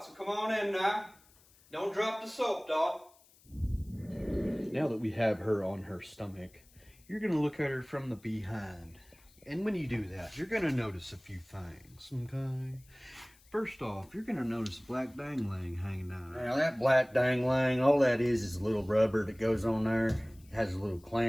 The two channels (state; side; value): noise; left; hiss, 28 dB below the sound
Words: so come on in now. Don't drop the soap, dog. Now that we have her on her stomach, you're gonna look at her from the behind. And when you do that, you're gonna notice a few things, okay? First off, you're gonna notice a black dangling hanging down there. Now that black dangling, all that is a little rubber that goes on there. It has a little